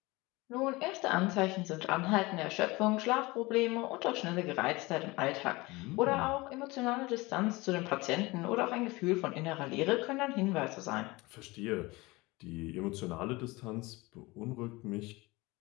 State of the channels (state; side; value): quieter; right; 22.6 dB